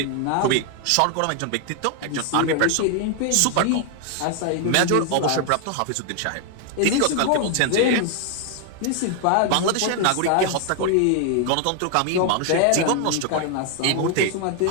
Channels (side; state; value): both; different; correlation 0.00